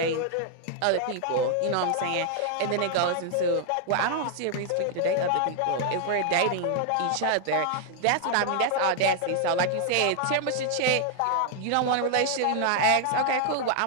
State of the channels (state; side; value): different; both; correlation 0.00